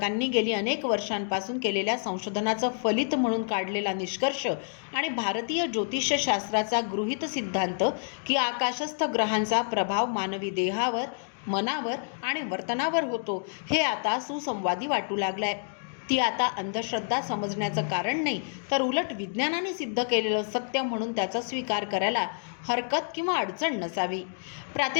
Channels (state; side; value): silent; right; digital silence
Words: गेली अनेक वर्षांपासून केलेल्या संशोधनाचं फलित म्हणून काढलेला निष्कर्ष आणि भारतीय ज्योतिषशास्त्राचा गृहीत सिद्धांत की आकाशस्थ ग्रहांचा प्रभाव मानवी देहावर, मनावर आणि वर्तनावर होतो, हे आता सुसंवादी वाटू लागलाय. ती आता अंधश्रद्धा समजण्याचं कारण नाही, तर उलट विज्ञानाने सिद्ध केलेलं सत्य म्हणून त्याचा स्वीकार करायला हरकत किंवा अडचण नसावी.